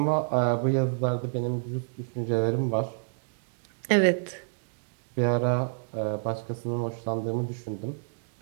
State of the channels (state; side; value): silent; left; digital silence